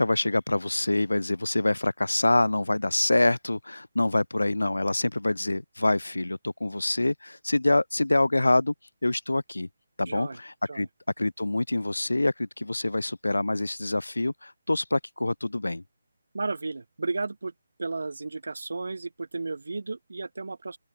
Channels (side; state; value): both; inverted; correlation -0.99